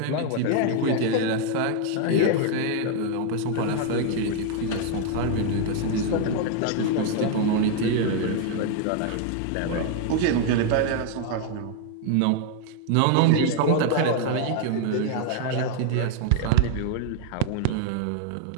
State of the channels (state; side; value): different; both; correlation 0.00